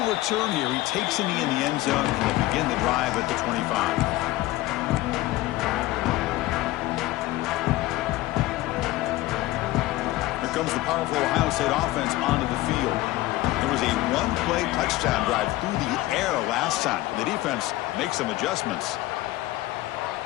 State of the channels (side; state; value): right; quieter; 17.5 dB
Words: return here. He takes in the end zone, and they begin the drive at the 25. Comes the powerful Ohio State offense onto the field. There was a one-play touchdown drive through the air last time. The defense makes some adjustments.